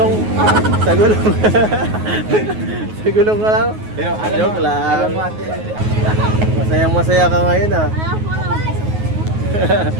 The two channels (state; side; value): late; left; 9.4 ms